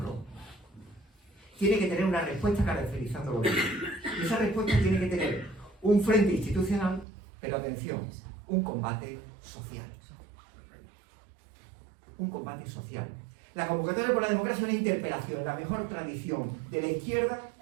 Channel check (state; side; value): drops out; left; at 7.1 s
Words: tiene que tener una respuesta caracterizándolo bien. Y esa respuesta tiene que tener un frente institucional, pero atención, un combate social. Un combate social. La convocatoria por la democracia es una interpelación en la mejor tradición de la izquierda